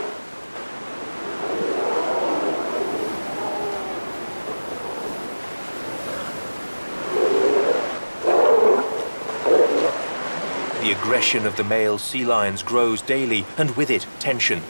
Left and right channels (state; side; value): inverted; both; correlation -1.00